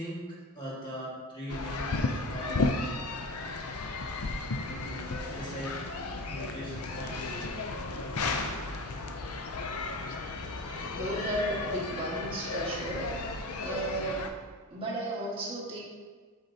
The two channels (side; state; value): both; normal; correlation 0.30